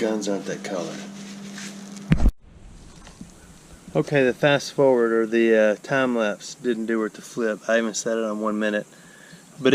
aren't that color. Okay, the fast forward or the time lapse didn't do it to flip. I even set it on 1 minute. But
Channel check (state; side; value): identical; both; correlation 1.00